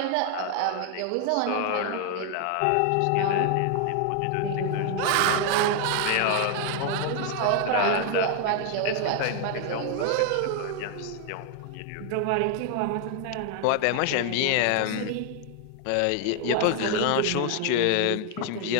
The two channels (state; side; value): different; both; correlation 0.00